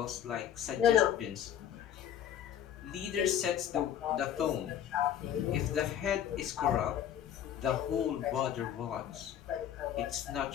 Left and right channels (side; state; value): right; quieter; 10.1 dB